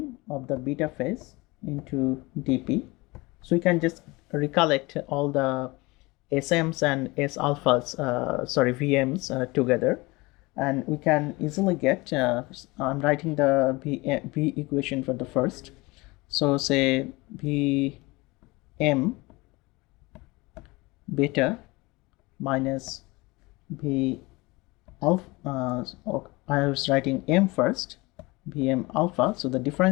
of the beta phase into dp. So we can just recollect all the SMs and S alphas, VMs together, and we can easily get, I'm writing the V equation for the first. So say Vm beta minus V alpha, I was writing M first, Vm alpha. So the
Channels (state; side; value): quieter; right; 23.3 dB